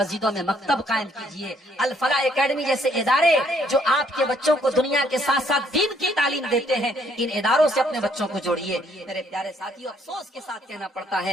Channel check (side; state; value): both; normal; correlation 0.67